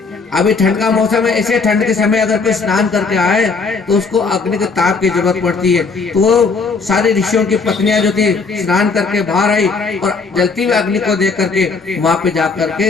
अभी ठंड का मौसम है, ऐसे ठंड के समय अगर कोई स्नान करके आए तो उसको अग्नि के ताप की जरूरत पड़ती है। तो वो सारी ऋषियों की पत्नियां जो थी स्नान करके बाहर आई और जलती हुई अग्नि को देख करके वहां पे जा करके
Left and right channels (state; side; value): quieter; right; 4.5 dB